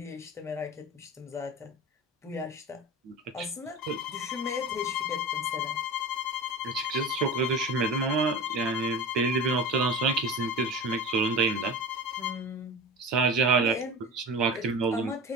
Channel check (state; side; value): normal; both; correlation 0.32